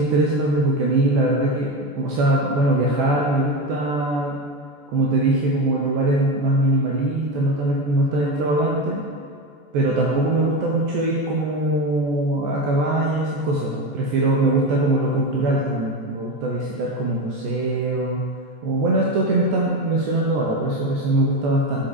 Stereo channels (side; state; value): left; late; 14 ms